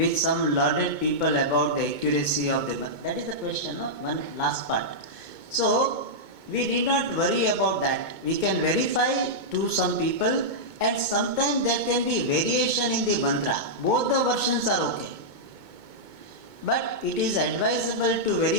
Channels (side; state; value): left; late; 2.2 ms